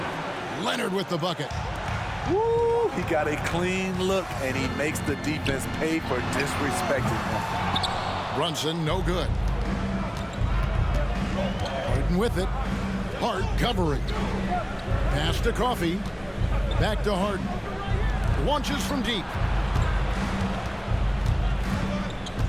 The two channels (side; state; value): both; identical; correlation 1.00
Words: Leonard with the bucket. Woo! He got a clean look, and he makes the defense pay for disrespecting him. Brunson, no good. Harden with it. Hart covering. Pass to Coffee. Back to Harden. Launches from deep.